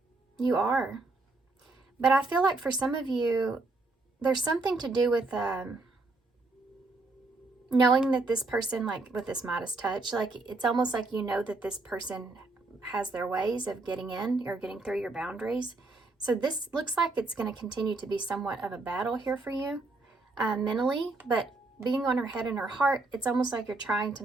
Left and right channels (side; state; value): left; quieter; 3.3 dB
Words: You are. But I feel like for some of you, there's something to do with knowing that this person, like with this Midas touch, like it's almost like you know that this person has their ways of getting in or getting through your boundaries. So this looks like it's going to continue to be somewhat of a battle here for you mentally, but being on her head and her heart, it's almost like you're trying to